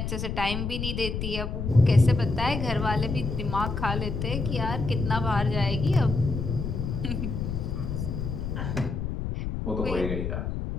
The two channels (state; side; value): noise; left; rumble, 3 dB below the sound